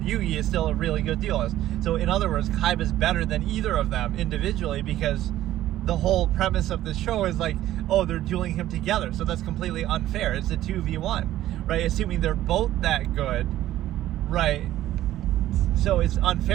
Yugi is still a really good duelist. So in other words, Kaiba's better than either of them individually because the whole premise of the show is like, oh, they're dueling him together. So that's completely unfair. It's a 2v1, right? Assuming they're both that good, right? So it's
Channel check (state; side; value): quieter; left; 13.8 dB